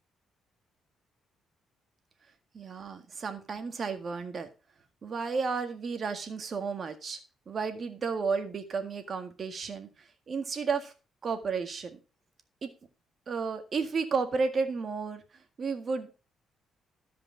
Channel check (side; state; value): left; quieter; 4.5 dB